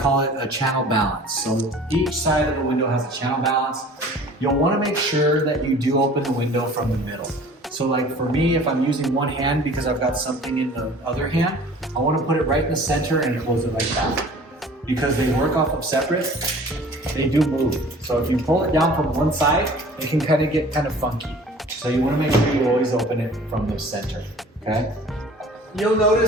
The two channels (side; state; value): both; normal; correlation 0.47